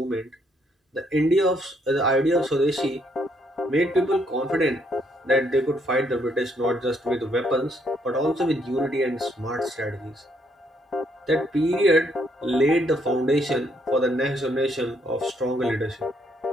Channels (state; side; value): normal; both; correlation 0.71